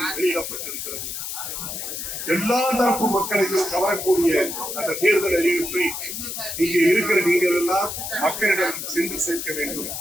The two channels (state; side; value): noise; left; hiss, 6 dB below the sound